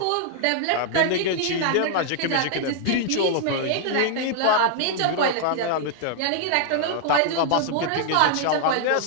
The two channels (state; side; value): different; both; correlation 0.00